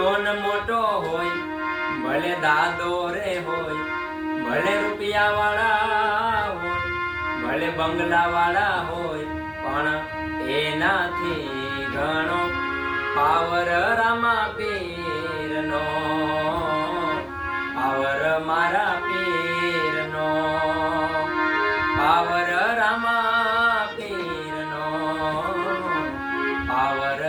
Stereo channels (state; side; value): identical; both; correlation 1.00